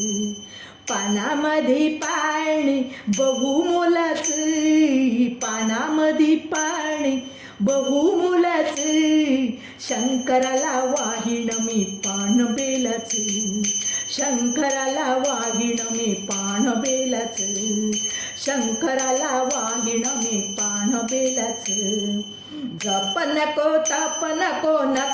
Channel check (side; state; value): both; identical; correlation 1.00